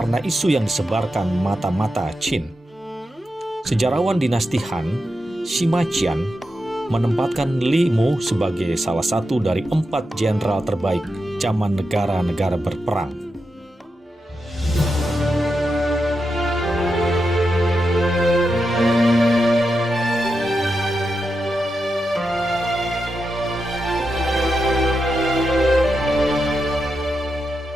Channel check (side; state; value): both; normal; correlation 0.87